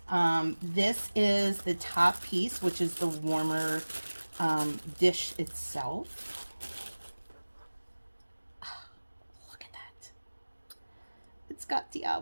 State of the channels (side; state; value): both; inverted; correlation -1.00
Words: This is the top piece, which is the warmer dish itself. Oh, look at that. It's got